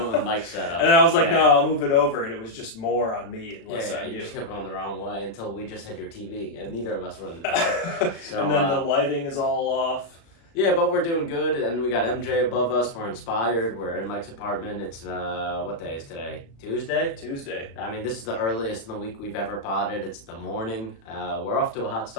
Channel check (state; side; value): late; right; 36 ms